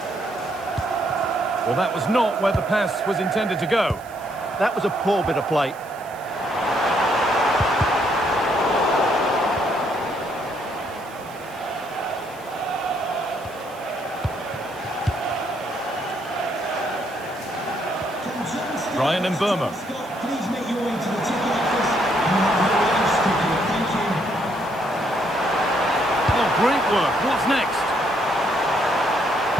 Well, that was not where the pass was intended to go. That was a poor bit of play. Ryan and Burma. Please make your way to the ticket office. You have no else to do. Thank you. What's next?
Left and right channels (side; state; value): right; noise; hiss, 23 dB below the sound